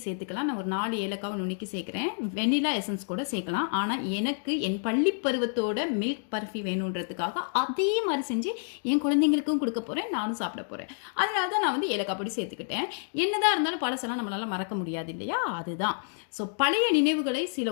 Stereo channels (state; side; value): silent; right; digital silence